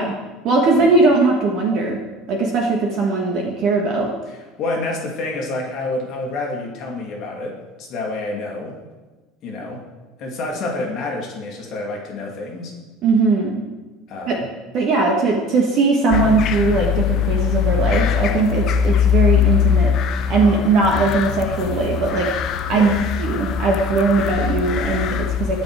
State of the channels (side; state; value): both; normal; correlation 0.44